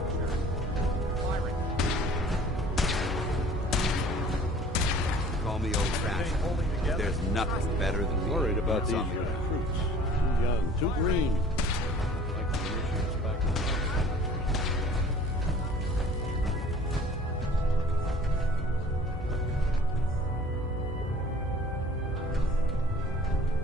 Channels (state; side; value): normal; both; correlation 0.49